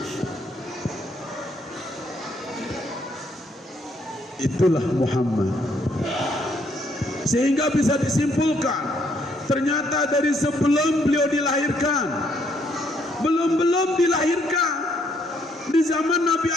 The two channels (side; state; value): both; normal; correlation 0.70